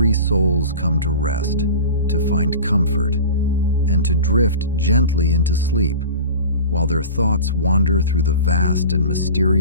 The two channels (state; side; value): inverted; both; correlation -0.35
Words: souls come to rest, to find comfort, and to drift gently into sleep while their thoughts wander through the vast and